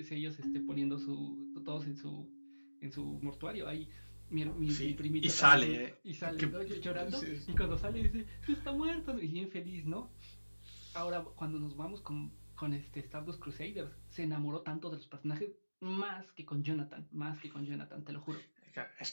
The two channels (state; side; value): inverted; both; correlation -1.00